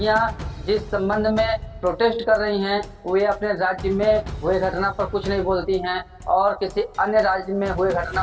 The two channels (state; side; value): identical; both; correlation 1.00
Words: जिस संबंध में प्रोटेस्ट कर रही हैं वे अपने राज्य में हुए घटना पर कुछ नहीं बोलती हैं और किसी अन्य राज्य में हुए